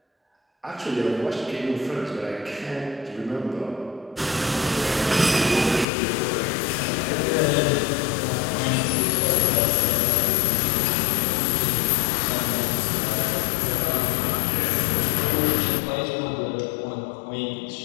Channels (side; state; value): right; drops out; at 5.9 s